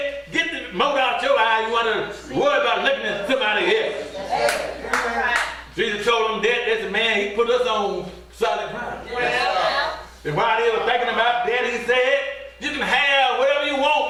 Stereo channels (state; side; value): identical; both; correlation 1.00